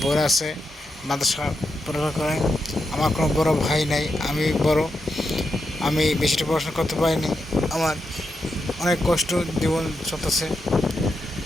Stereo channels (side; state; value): both; normal; correlation 0.85